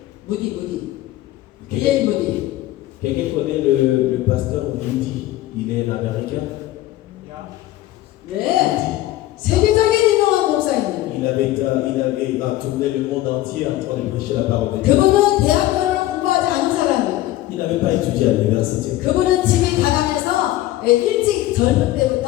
무디. 비엘 무디. Quelqu'un connaît le pasteur Moody? Il est l'américain. 네. 세계적인 유명한 목사입니다. Il a tourné le monde entier en train de prêcher la parole de Dieu. 그분은 대학교를 공부하지 않은 사람이에요. Il n'avait pas étudié à l'université. 그분은 집이 가난해서 일찍 젊은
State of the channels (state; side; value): quieter; right; 15.4 dB